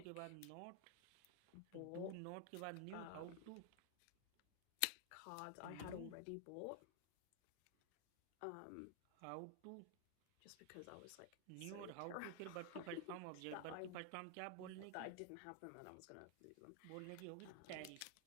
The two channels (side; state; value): both; different; correlation 0.00